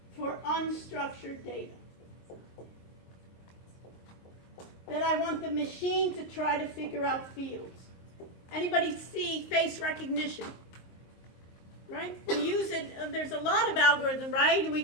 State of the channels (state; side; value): late; right; 22 ms